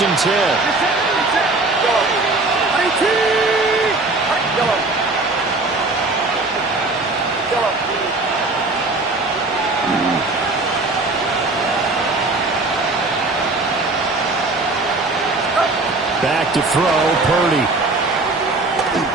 and 10. Back to throw, Purdy.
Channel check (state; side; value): quieter; left; 3.2 dB